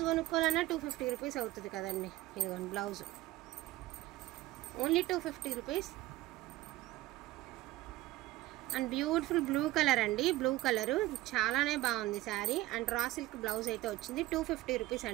కొనుక్కోవాలన్నా 250 రూపీస్ అవుతుంది కదండి. ఇదిగోండి blouse, only 250 rupees. And beautiful blue colour అండి, బ్లూ కలరు చాలానే బాగుంది sari. And raw silk blouse అయితే వచ్చింది, 250 రూపీస్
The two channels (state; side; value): quieter; left; 17.2 dB